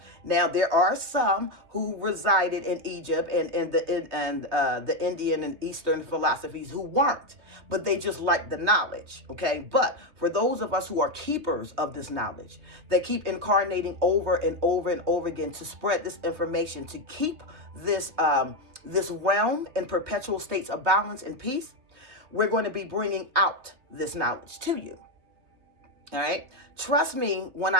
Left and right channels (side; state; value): left; late; 3.2 ms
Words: Now there are some who resided in Egypt and the Indian and Eastern philosophies who weren't, but they just liked the knowledge. Okay, but for those of us who are keepers of this knowledge, that keep incarnating over and over and over again to spread this information, to keep this realm in perpetual states of balance and peace, we're going to be bringing out this knowledge to you. All right, trust me when